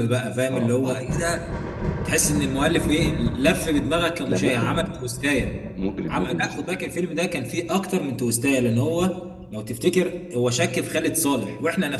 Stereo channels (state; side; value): identical; both; correlation 1.00